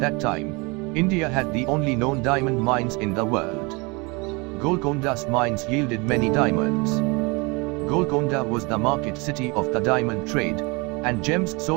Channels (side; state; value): left; quieter; 27.9 dB